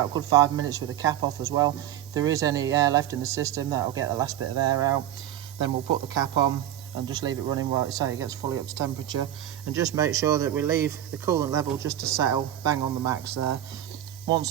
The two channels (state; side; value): quieter; left; 11.9 dB